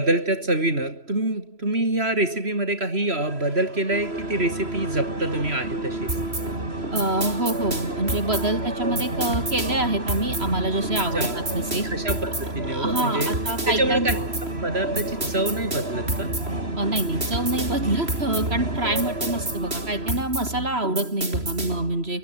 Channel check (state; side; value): late; left; 3.0 ms